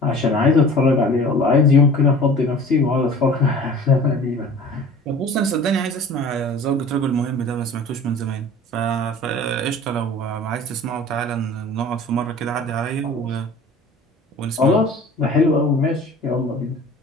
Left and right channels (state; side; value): normal; both; correlation 0.43